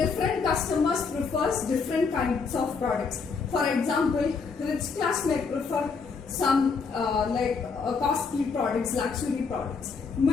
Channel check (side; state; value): right; quieter; 5.0 dB